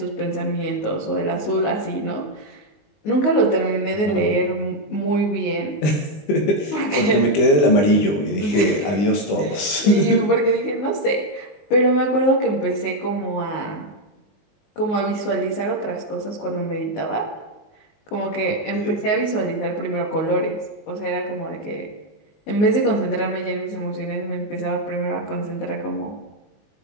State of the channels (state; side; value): late; right; 20 ms